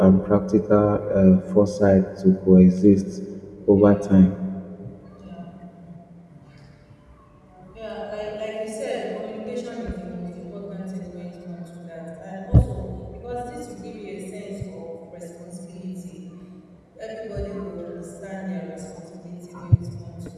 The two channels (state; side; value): identical; both; correlation 1.00